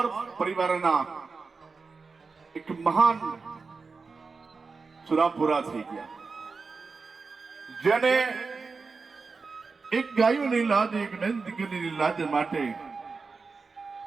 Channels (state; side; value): quieter; left; 4.5 dB